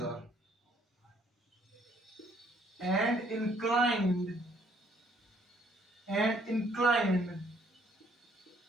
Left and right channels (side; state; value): both; normal; correlation 0.65